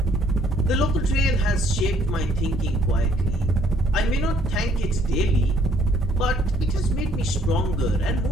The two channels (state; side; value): normal; both; correlation 0.64